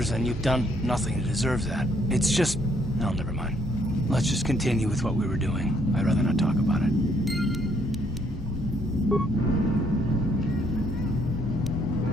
and you've done nothing to deserve that. It's just... no, never mind. Let's just continue with what we were doing. I'd rather not talk about it.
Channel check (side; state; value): both; normal; correlation 0.68